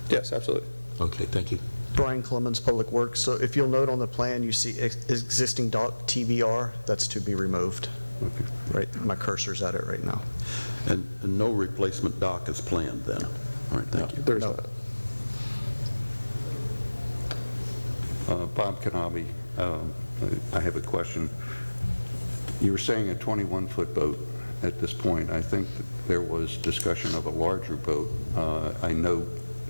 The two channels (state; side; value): inverted; both; correlation -1.00